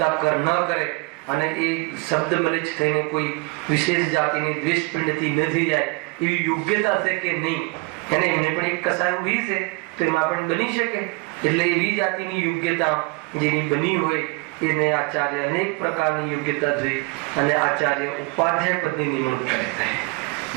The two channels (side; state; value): left; quieter; 27.8 dB